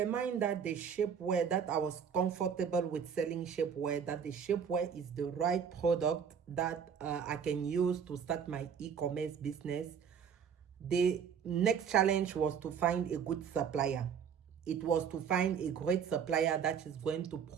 that the shapewear, that I was comfortable with selling shapewear, that the shapewear is the right product that I can use to start my e-commerce business, the next challenge was to find a good supplier. It was to find a great supplier that is going to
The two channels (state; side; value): quieter; left; 7.3 dB